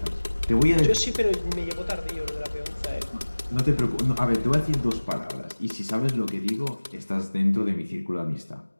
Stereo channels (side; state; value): both; inverted; correlation -1.00